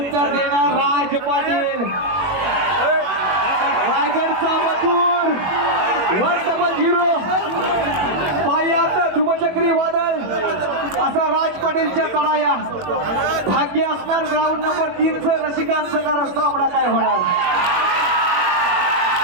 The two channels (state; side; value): late; left; 21 ms